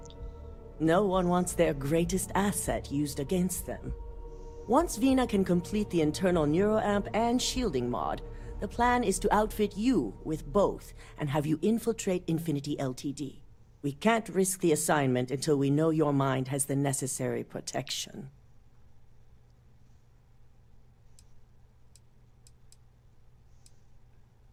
No one wants their greatest asset used against them. Once Vina can complete the internal neuroamp and shielding mod, the plan is to outfit you with both and have you infiltrate Infinity Ltd. We can't risk the assignment until we know your mind has the necessary protection.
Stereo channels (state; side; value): identical; both; correlation 1.00